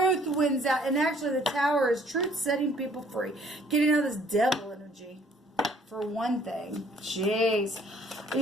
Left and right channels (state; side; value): normal; both; correlation 0.59